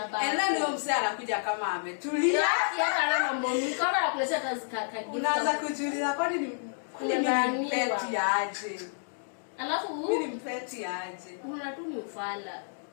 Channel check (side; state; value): right; silent; digital silence